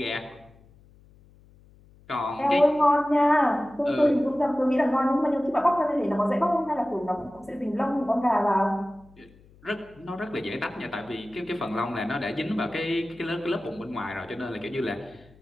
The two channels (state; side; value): noise; left; hum, 27 dB below the sound